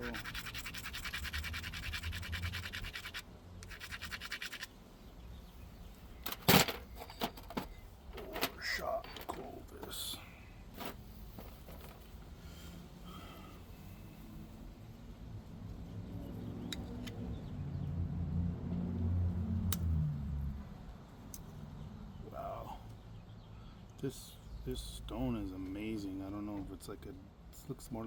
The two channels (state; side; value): identical; both; correlation 1.00